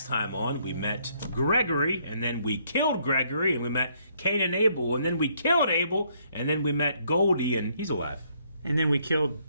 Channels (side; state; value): both; inverted; correlation -0.69